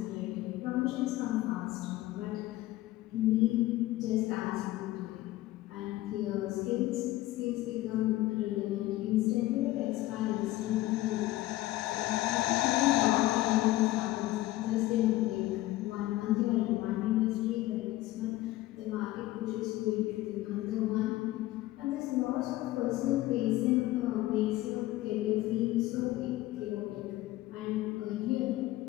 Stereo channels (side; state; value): right; quieter; 16.9 dB